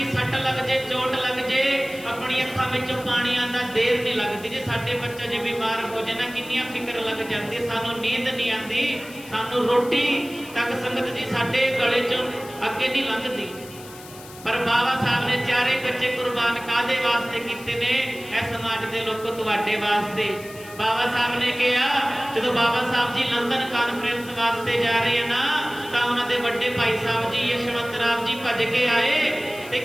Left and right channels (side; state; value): left; noise; hiss, 18 dB below the sound